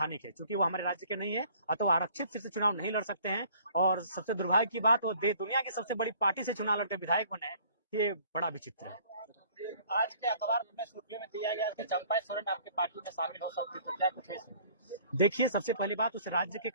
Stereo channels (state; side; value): inverted; both; correlation -0.55